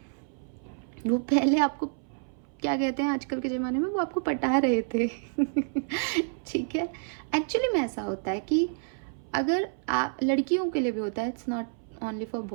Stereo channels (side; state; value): left; silent; 59 dB below the other